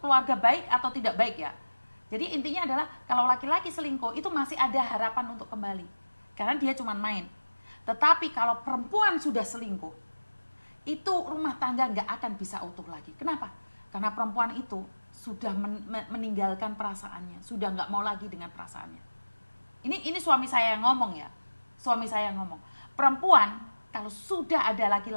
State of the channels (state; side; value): inverted; both; correlation -1.00